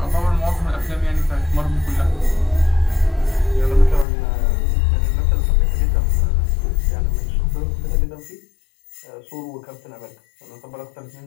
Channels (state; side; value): drops out; right; at 4.0 s